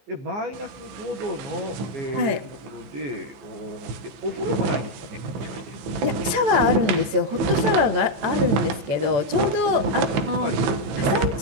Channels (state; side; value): late; left; 14 ms